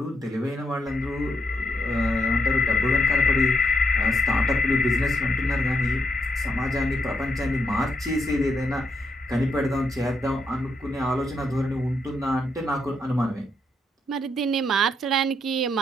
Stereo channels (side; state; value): both; normal; correlation 0.79